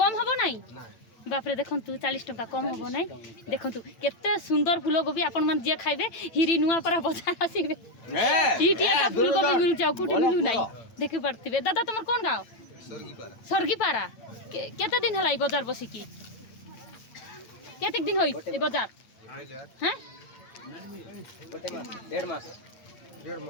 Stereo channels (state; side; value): late; right; 9.0 ms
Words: हबो नाही बाप रे देखंतु 40 टंका कम हबो नाही देखंतु केते सुंदर फूलकोबी आपण मन जे खाइबे हिरी नुआपारा बाजार आसीबे इटी एटा फूलकोबी मिल जाऊ कुटी मिलु नाही देखि पड़तिबे दादा तमर कोन गांव सरगीपारा केते दिन हलाई बाजार बसी की केते दिन होई ए बाजार हैं